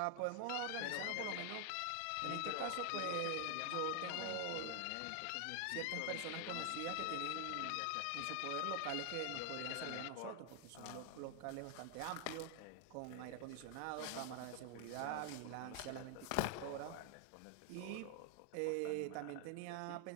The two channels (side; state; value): both; different; correlation 0.00